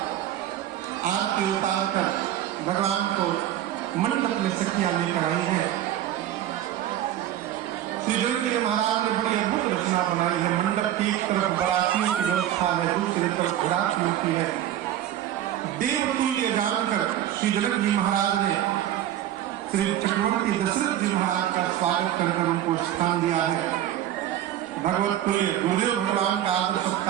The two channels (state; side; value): quieter; left; 12.1 dB